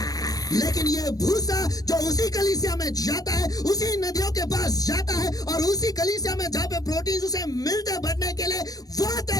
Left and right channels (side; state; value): right; late; 0.18 ms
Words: लेकिन ये भूसा जो उसी कलीसिया में जाता है, उसी नदियों के पास जाता है, और उसी कलीसिया में जहाँ पे प्रोटीन उसे मिलते बढ़ने के लिए, वो